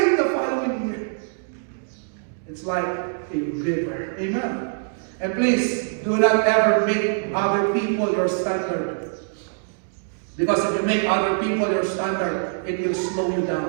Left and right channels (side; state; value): left; silent; digital silence